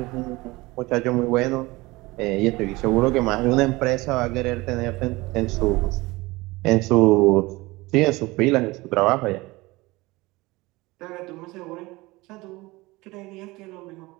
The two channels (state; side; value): quieter; left; 21.5 dB